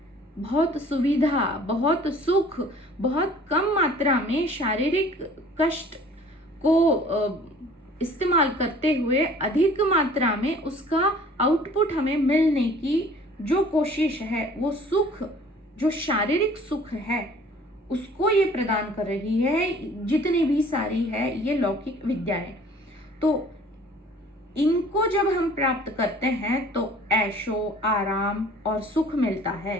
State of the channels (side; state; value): both; normal; correlation 0.51